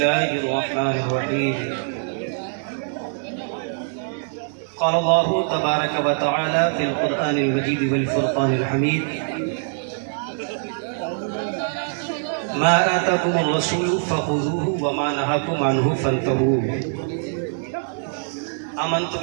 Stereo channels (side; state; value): left; silent; digital silence